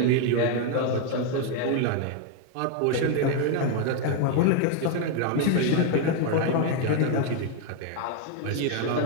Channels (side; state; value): both; different; correlation 0.01